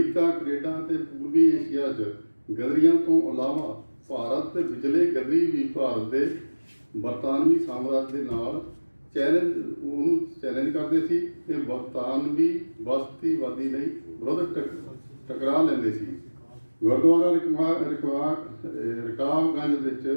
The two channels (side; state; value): both; inverted; correlation -1.00